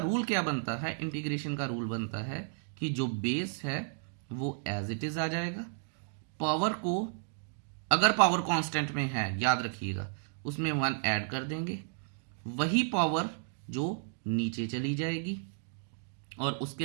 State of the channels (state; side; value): silent; left; digital silence